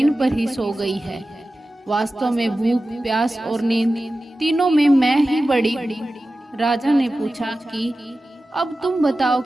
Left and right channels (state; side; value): normal; both; correlation 0.95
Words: पर ही सो गई है। वास्तव में भूख, प्यास और नींद तीनों में मैं ही बड़ी हूँ। राजा ने पूछा कि अब तुम बताओ